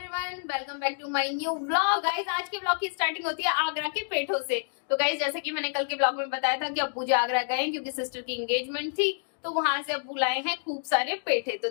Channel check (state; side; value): silent; right; digital silence